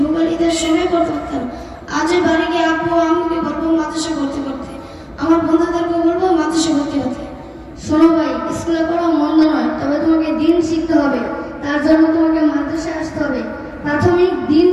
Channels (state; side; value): identical; both; correlation 1.00